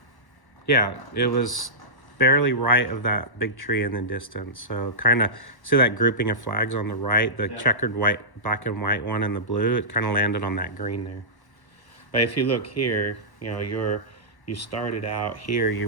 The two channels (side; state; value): right; late; 1.1 ms